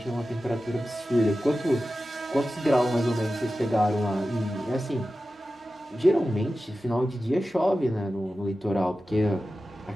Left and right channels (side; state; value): both; normal; correlation 0.94